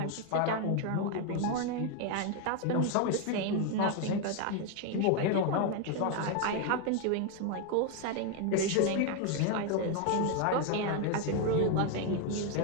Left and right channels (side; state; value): both; different; correlation 0.01